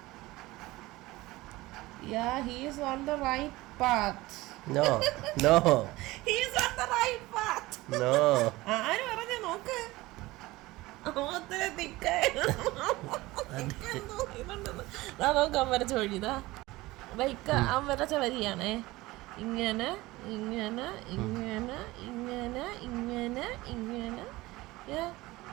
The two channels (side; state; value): left; quieter; 19.6 dB